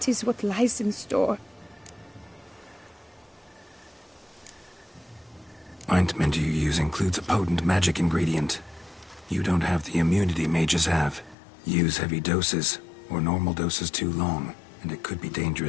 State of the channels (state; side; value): drops out; right; at 11.4 s